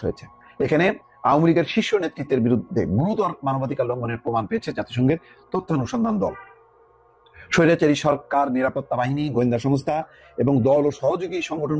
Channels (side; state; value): both; identical; correlation 1.00